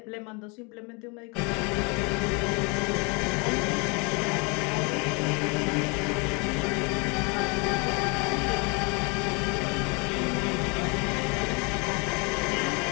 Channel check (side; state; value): right; quieter; 31.6 dB